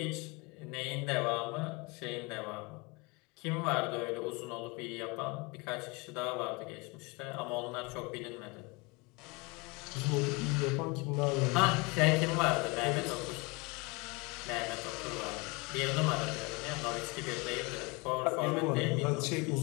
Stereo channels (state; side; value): quieter; right; 26.9 dB